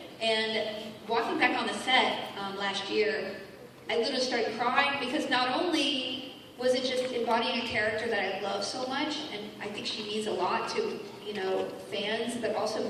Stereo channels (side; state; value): both; identical; correlation 1.00